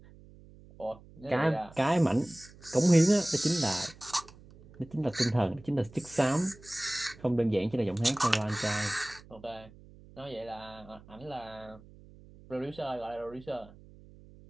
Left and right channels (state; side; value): noise; right; hum, 22 dB below the sound